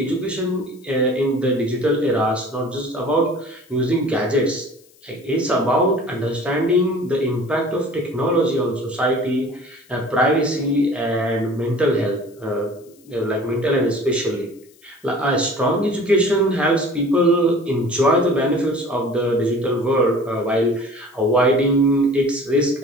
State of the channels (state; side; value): noise; left; hiss, 29 dB below the sound